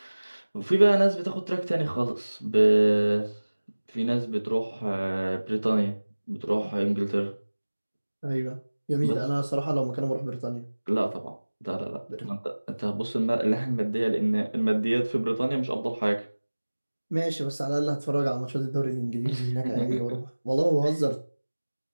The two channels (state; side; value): inverted; both; correlation -1.00